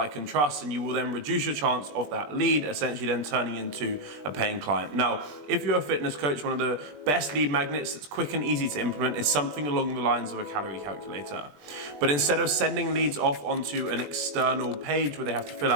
and trust, and you will then reduce your chance of that lead essentially then turning into a paying client. Now, if you're a fitness coach, one of the best lead magnets that's quick and easy to implement is something along the lines of a calorie calculator. But instead of sending leads off onto an external page where they have to fill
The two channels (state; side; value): late; left; 20 ms